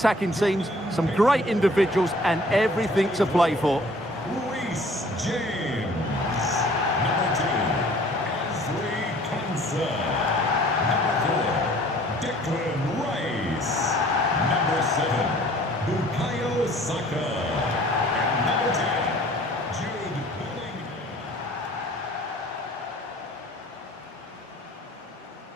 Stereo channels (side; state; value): both; normal; correlation 0.53